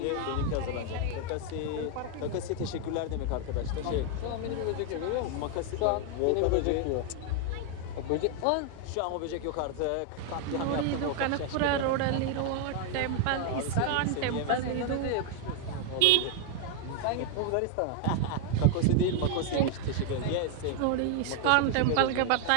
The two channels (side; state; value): both; different; correlation 0.00